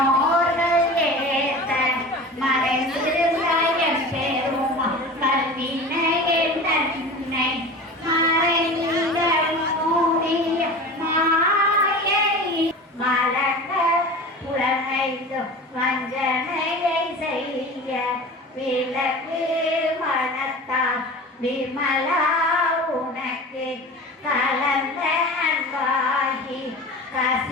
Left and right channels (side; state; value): both; normal; correlation 0.34